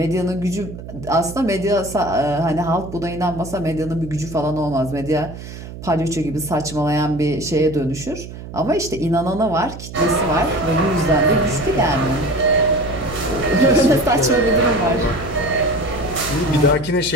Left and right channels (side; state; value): right; noise; hum, 12 dB below the sound